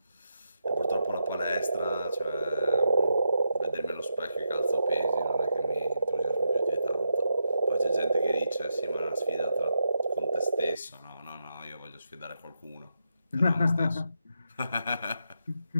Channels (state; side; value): inverted; both; correlation -0.84